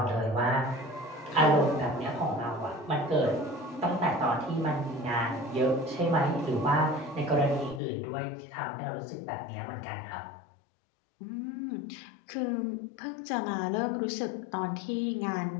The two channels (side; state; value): right; drops out; at 7.8 s